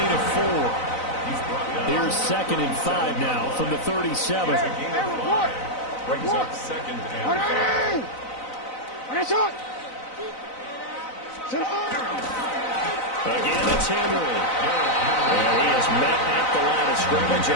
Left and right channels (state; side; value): late; right; 4.0 ms